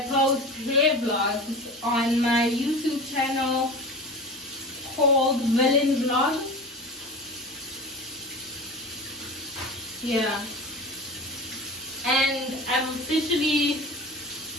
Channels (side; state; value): both; normal; correlation 0.33